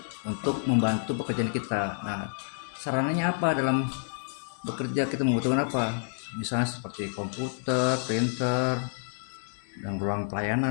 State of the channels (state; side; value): silent; right; digital silence